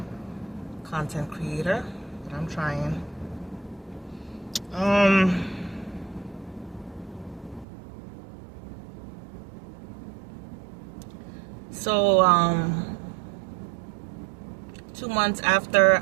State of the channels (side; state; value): left; drops out; at 7.7 s